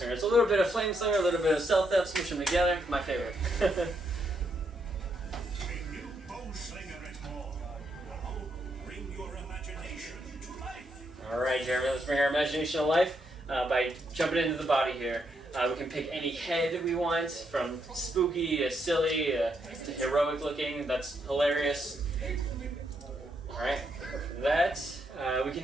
It's a little bit of Flame Slinger, a little bit of Stealth Theft, smush them together. My favorite. A new Bowslinger is born. Now bring your imagination to life. Alright, Jeremy, let's bring our imagination to life by jumping into the body here. We can pick any head we want, from spooky to silly to heroic looking. That's hilarious. Alright, from that, we can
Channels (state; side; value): normal; both; correlation 0.77